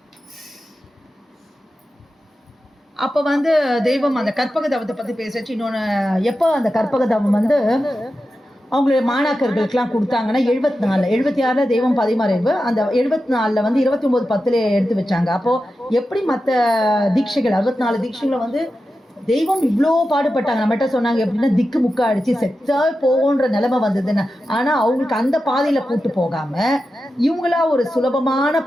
அப்ப வந்து தெய்வம் அந்த கற்பக தவத்தை பத்தி பேசச்சு. இன்னொன்னு எப்போ அந்த கற்பக தவம் வந்து அவங்களுடைய மாணாக்கர்களுக்கெல்லாம் கொடுத்தாங்கன்னா 76 தெய்வம் 16 அந்த 74 வந்து 29:10 எடுத்து வச்சாங்க. அப்போ எப்படி மற்ற தீட்சைகள் 64 தீட்சைகளை வந்து தெய்வம் இவ்வளோ பாடுபட்டாங்க. நம்மகிட்ட சொன்னாங்க எப்படின்னா திக்கு முக்க அடிச்சு செத்தா போகுன்ற நிலைமை வந்ததுன்னு. ஆனா அவங்களுக்கு அந்த பாதையில கூட்டு போகாம இவங்களா ஒரு சுலபமான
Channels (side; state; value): both; normal; correlation 0.91